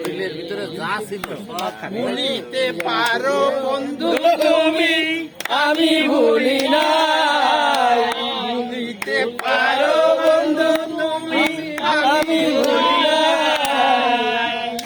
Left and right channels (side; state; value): both; identical; correlation 1.00